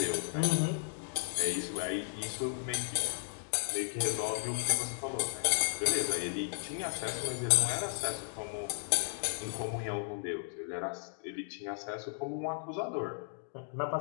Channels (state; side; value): silent; right; digital silence